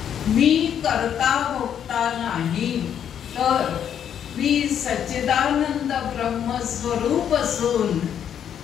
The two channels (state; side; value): quieter; right; 9.0 dB